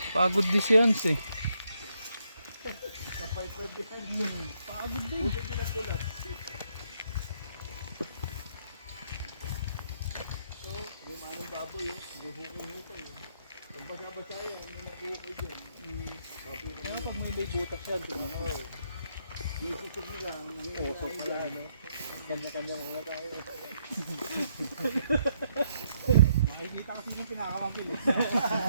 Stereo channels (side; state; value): both; inverted; correlation -0.74